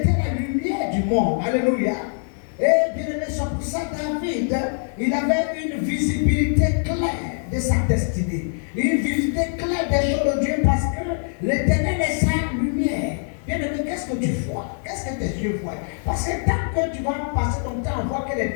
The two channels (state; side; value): silent; right; 63 dB below the other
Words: la lumière du monde. Alléluia. Et bien aimé, c'est pour ça David, il avait une visibilité claire de sa destinée. Une visibilité claire des choses de Dieu parce que l'Éternel est sa lumière. Bien aimé, qu'est-ce que tu vois? Qu'est-ce que tes yeux voient? Parce que tant que tu vas passer ton temps à voir que les